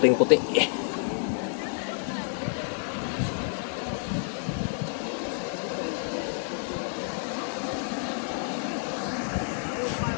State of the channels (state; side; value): silent; right; digital silence